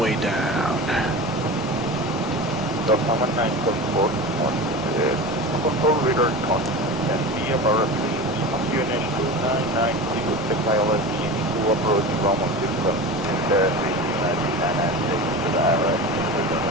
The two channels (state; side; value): normal; both; correlation 0.29